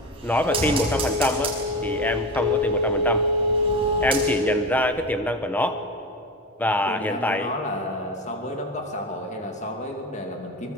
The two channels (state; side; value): normal; both; correlation 0.24